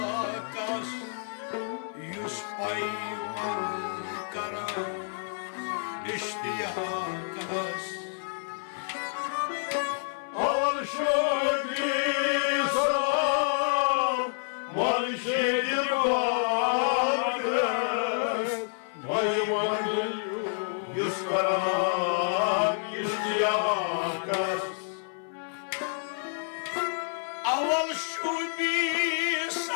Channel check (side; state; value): right; silent; 58 dB below the other